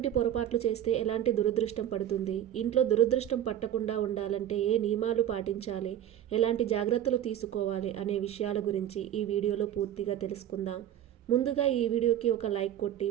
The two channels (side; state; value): left; quieter; 11.2 dB